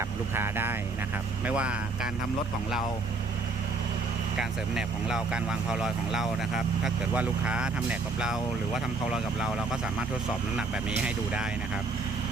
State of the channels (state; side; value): quieter; left; 3.7 dB